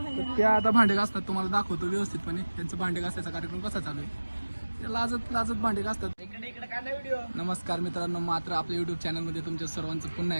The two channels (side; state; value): both; inverted; correlation -1.00